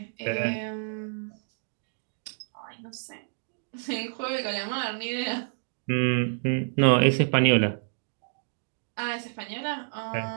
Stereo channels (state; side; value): silent; left; digital silence